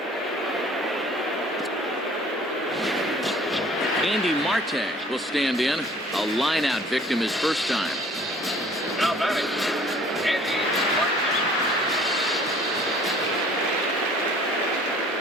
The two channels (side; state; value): both; normal; correlation 0.53